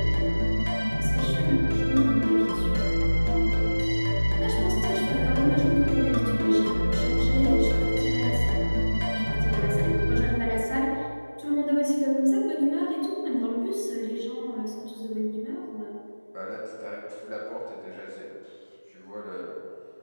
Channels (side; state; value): both; inverted; correlation -1.00